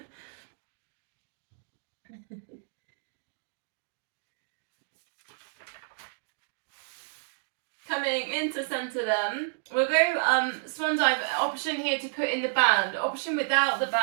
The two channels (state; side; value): silent; left; digital silence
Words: Coming into centre then, we'll go swan dive. Option here to put in the band. Option without the